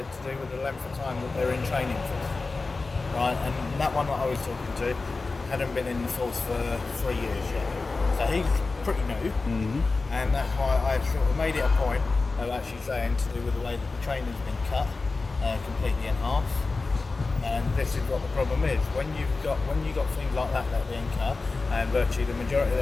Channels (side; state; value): right; quieter; 3.8 dB